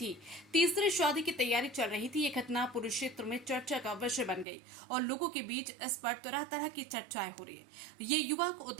तीसरी शादी की तैयारी चल रही थी। ये घटना पूरे क्षेत्र में चर्चा का विषय बन गई और लोगों के बीच इस पर तरह तरह की चर्चाएं हो रही है। ये युवक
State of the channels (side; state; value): left; drops out; at 4.5 s